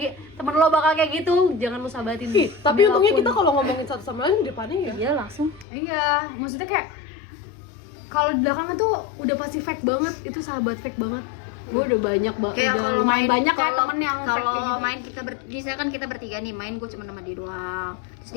bakal kayak gitu, jangan lu sahabatin. Tapi Demi untungnya apapun. kita kalau ngomongin satu sama lain di depannya ya Iya langsung. Iya, maksudnya kayak kalau di belakang tuh udah pasti fake banget, itu sahabat fake banget. Gue udah banyak Kayak kalau main banyak kayak kalau temen yang fake kalau kayak gitu. main kita misalkan kita bertiga nih main, gue cuma sama dia doang, terus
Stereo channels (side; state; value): right; drops out; at 5.7 s